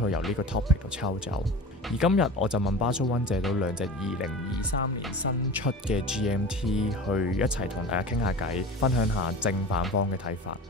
佢由呢個 topic 度抽走。而今日我就問巴蘇溫借到兩隻2023年新出嘅 GMT 去一齊同大家傾下偈，分享下正反方嘅睇法，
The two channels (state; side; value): normal; both; correlation 0.34